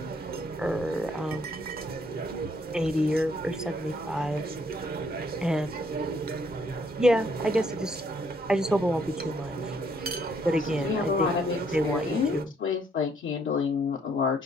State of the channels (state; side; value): normal; both; correlation 0.68